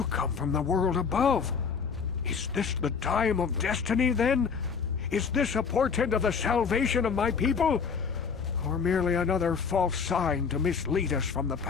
come from the world above. Is this the time of destiny, then? Is this a portent of the salvation of my people? Or merely another false sign to mislead us from the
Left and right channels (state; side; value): quieter; right; 6.0 dB